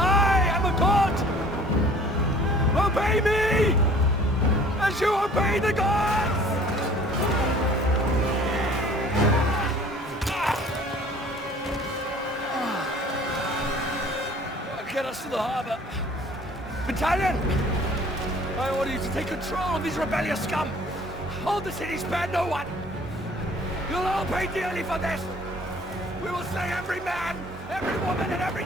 am a god. Obey me, as you obey the gods! us to the harbor. Battalion! I order you to take control of these rebellious scum. Hold the city, spare no one. You'll all pay dearly for this. We will slay every man, every woman, and every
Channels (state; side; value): normal; both; correlation 0.52